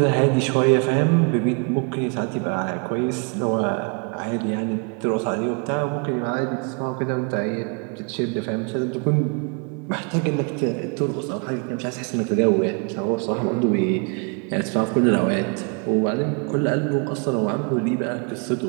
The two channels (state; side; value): quieter; left; 35.2 dB